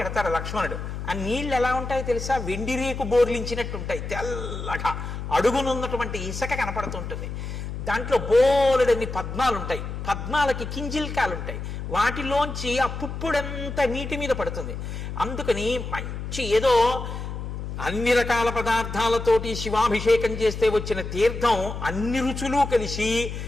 ఎడతాడు లక్ష్మణుడు. ఆ నీళ్ళు ఎలా ఉంటాయో తెలుసా? వెండి రేకు బోర్లించినట్టు ఉంటాయి, తెల్లగా. అడుగునున్నటువంటి ఇసుక కనపడుతుంటుంది. దాంట్లో బోలెడన్ని పద్మాలు ఉంటాయి. పద్మాలకి కింజిల్కాలు ఉంటాయి. వాటిలోంచి ఆ పుప్పుడంతా నీటి మీద పడుతుంది. అందుకని మంచి ఏదో అన్ని రకాల పదార్థాలతోటి శివాభిషేకం చేస్తే వచ్చిన తీర్థం అన్ని రుచులు కలిసి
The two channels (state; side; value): noise; left; hum, 6 dB below the sound